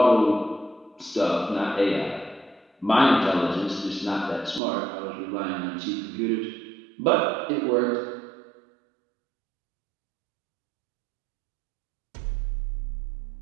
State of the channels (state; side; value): drops out; left; at 4.6 s